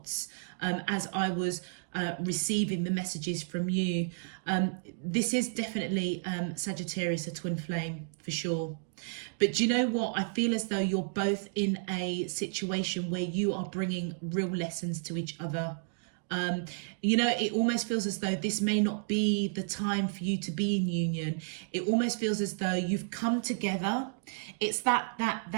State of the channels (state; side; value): silent; left; digital silence